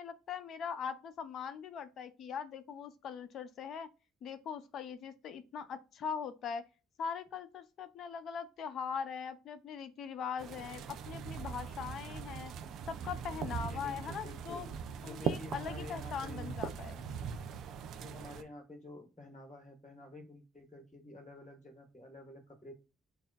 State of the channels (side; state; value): both; normal; correlation 0.56